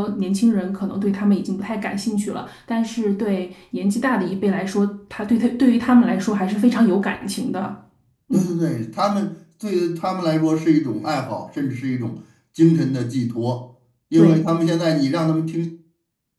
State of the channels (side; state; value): both; identical; correlation 1.00